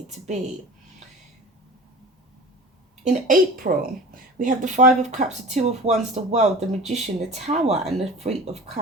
to be. In April, we have the Five of Cups, the Two of Wands, the World, the Magician, the Tower, and the Three of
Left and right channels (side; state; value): both; normal; correlation 0.38